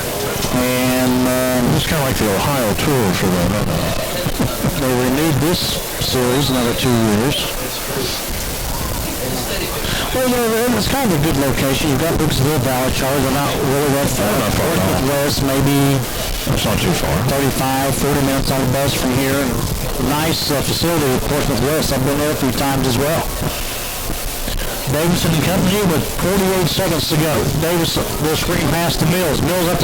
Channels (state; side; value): identical; both; correlation 1.00